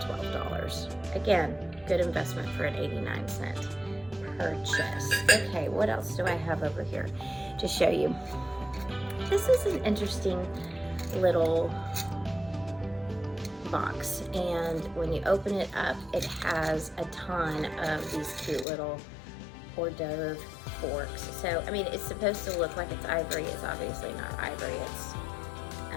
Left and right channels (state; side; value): drops out; right; at 18.7 s